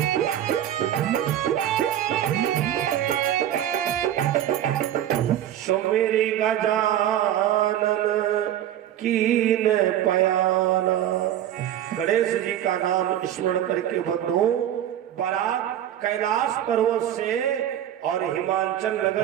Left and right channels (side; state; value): left; quieter; 11.4 dB